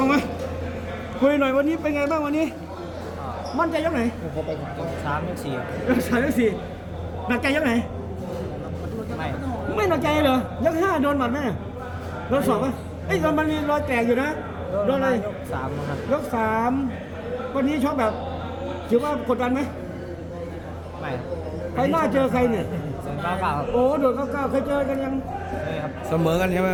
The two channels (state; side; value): identical; both; correlation 1.00